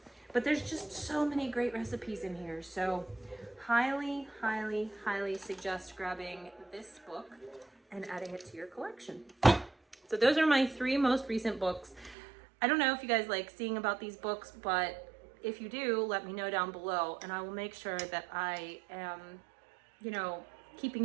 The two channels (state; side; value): drops out; left; at 12.2 s